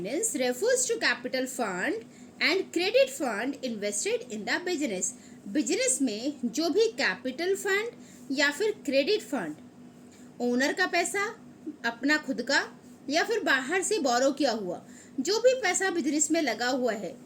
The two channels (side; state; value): both; identical; correlation 1.00